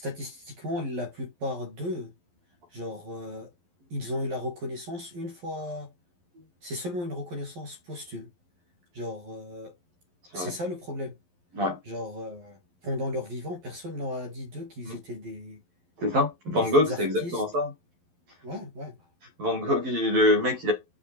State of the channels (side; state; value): left; late; 11 ms